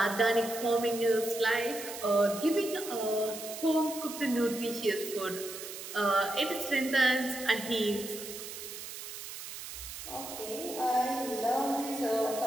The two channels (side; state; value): right; noise; hiss, 10 dB below the sound